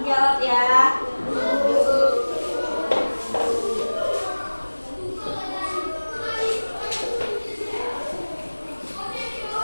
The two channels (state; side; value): inverted; both; correlation -1.00